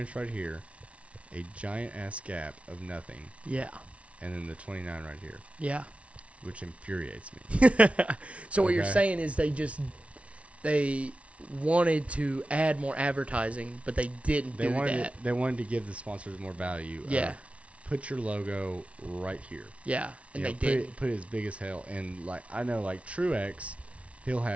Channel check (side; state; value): left; late; 0.063 ms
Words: right here, a giant ass gap of nothing, Yeah. and then the 29 right here, Yeah. which infuriates me. So what you're Okay. saying is they wanted to add more advertising, but they didn't They do wanted that. they wanted to give the sponsors more value. Yeah. Put your logo right here. Yeah. And You they know, did. put it as big as hell. And I know Truex, he'll